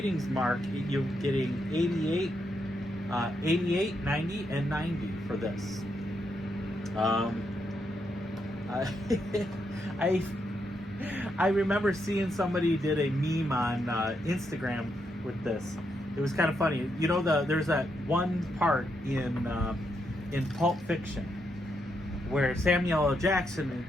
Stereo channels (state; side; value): normal; both; correlation 0.80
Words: mark, you're getting 88, 90, and 90 for this. I remember seeing somebody did a meme on Instagram with this. It was kind of funny. You know, there's that one part in Pulp Fiction where Samuel L. Jackson